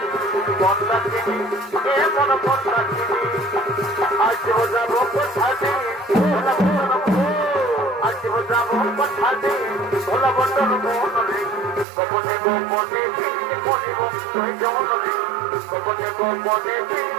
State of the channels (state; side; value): drops out; left; at 11.9 s